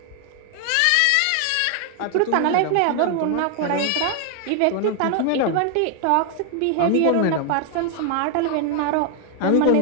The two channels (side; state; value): both; different; correlation 0.00